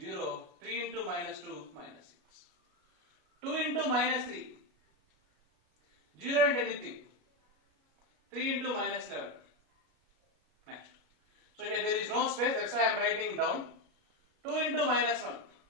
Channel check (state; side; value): late; left; 33 ms